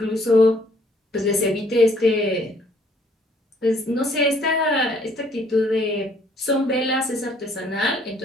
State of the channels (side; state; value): both; normal; correlation 0.63